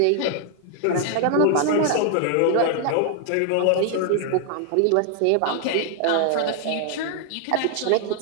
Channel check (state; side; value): different; both; correlation 0.00